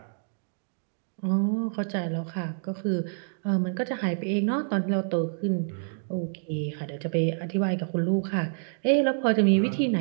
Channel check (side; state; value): left; silent; digital silence